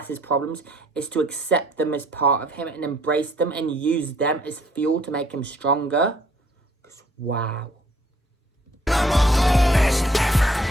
his problems is to accept them as part of him and embrace them and use them as fuel to make him stronger? Wow.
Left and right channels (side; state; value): both; normal; correlation 0.62